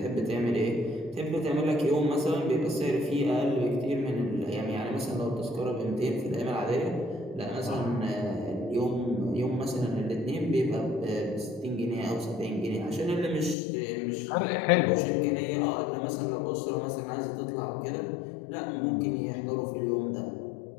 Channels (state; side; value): drops out; right; at 13.6 s